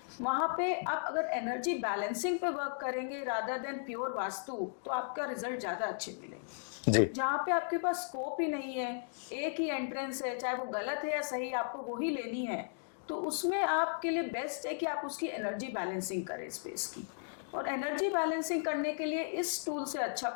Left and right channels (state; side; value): silent; right; digital silence